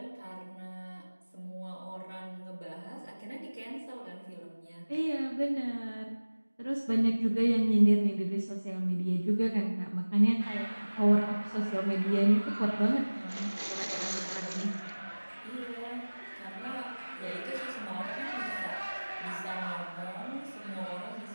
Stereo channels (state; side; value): inverted; both; correlation -1.00